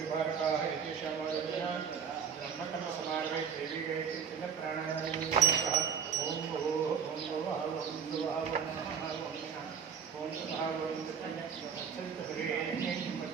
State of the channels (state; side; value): quieter; left; 7.1 dB